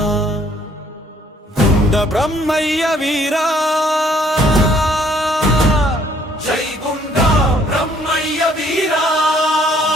గుండ బ్రహ్మయ్య వీరా జై గుండ బ్రహ్మయ్య వీరా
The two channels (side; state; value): both; normal; correlation 0.63